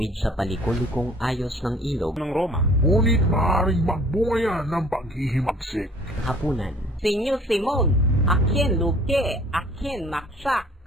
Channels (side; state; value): both; normal; correlation 0.53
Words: sa palikulikong ayos ng ilog ng Roma, ngunit maaaring magbunga yan ng paghihimagsik. Hapunan. Senyor Simon, akin luke, akin maksak.